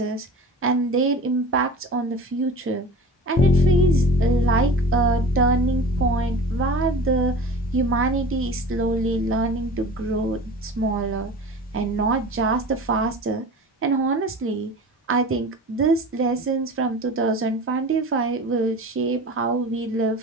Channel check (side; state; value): both; normal; correlation 0.37